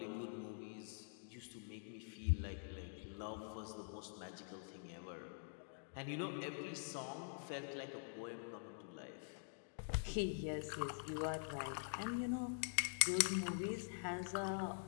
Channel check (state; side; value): silent; right; digital silence